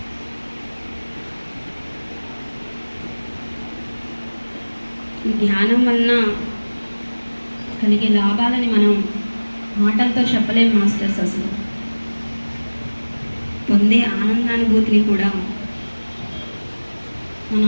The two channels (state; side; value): inverted; both; correlation -1.00